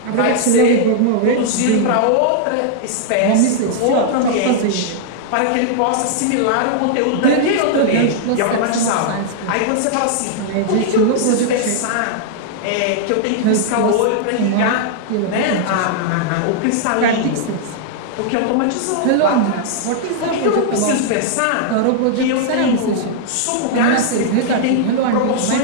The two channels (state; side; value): different; both; correlation -0.01